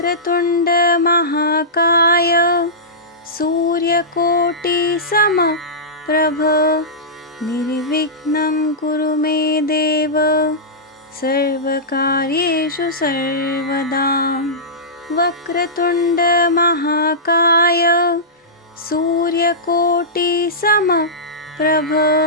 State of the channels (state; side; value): normal; both; correlation -0.16